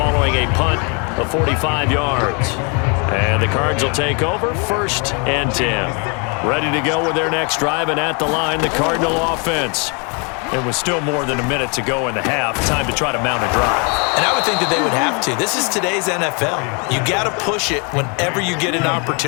a punt of 45 yards. And the Cards will take over 1st and 10. Ready to go with their next drive, and at the line, the Cardinal offense. It was still more than a minute to go in the half. Time to try to mount a drive. And I would think that they would have to. This is today's NFL. You got to push it whenever you get an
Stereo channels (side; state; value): right; quieter; 34.8 dB